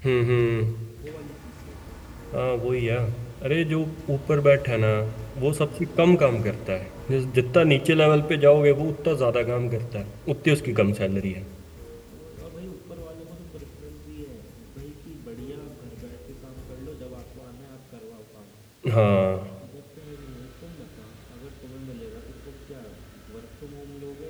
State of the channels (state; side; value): identical; both; correlation 1.00